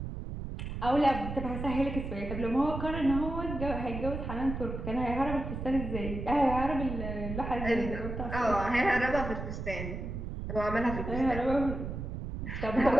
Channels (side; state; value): right; noise; rumble, 6 dB below the sound